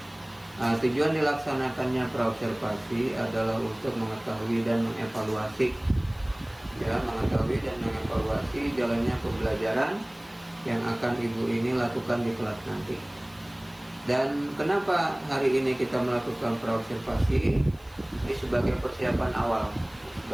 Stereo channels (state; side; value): noise; left; hiss, 28 dB below the sound